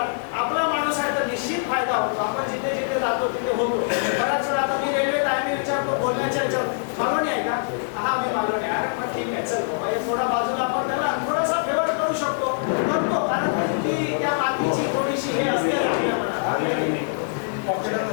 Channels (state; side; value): silent; right; digital silence